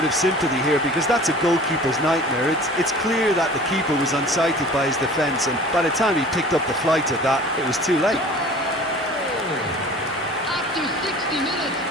of sympathy here because that's a goalkeeper's nightmare. It's clear that the keeper was unsighted by his defence, and by the time he picked up the flight of that, it was too late. After 60 minutes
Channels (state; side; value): normal; both; correlation 0.44